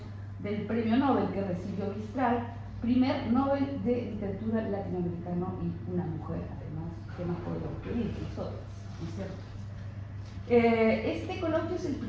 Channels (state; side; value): identical; both; correlation 1.00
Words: del premio Nobel que recibió Mistral, primer Nobel de Literatura latinoamericano y una mujer, además, que más podemos pedir, nosotros, ¿no es cierto? Este coloquio es el